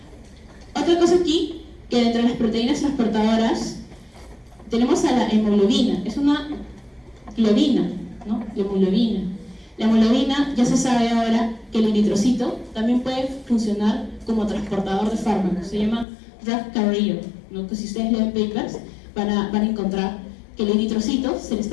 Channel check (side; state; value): right; drops out; at 16.1 s